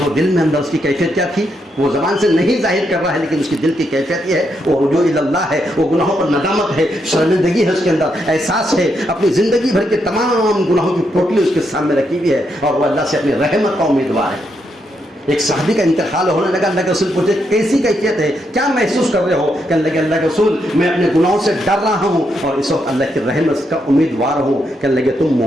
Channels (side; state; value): both; normal; correlation 0.80